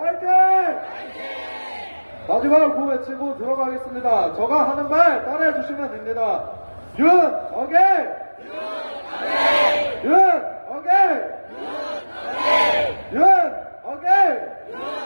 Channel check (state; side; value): inverted; both; correlation -1.00